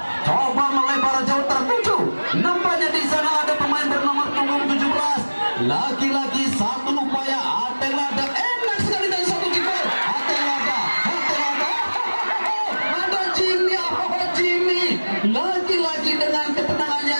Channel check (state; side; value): inverted; both; correlation -1.00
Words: coba melebar jauh tertuju. Nampaknya di sana ada pemain bernomor punggung 17. Lagi-lagi satu upaya Ateng Lada. Enak sekali dari satu kiper. Ateng Lada. Ada Jimmy. Jimmy. Lagi-lagi dengan ketenangannya